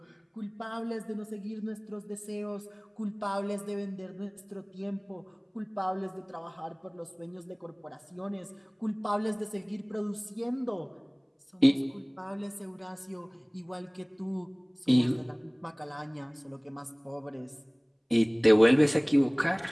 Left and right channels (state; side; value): identical; both; correlation 1.00